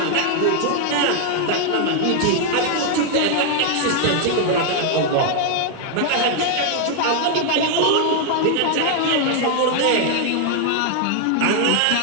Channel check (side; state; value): both; different; correlation 0.00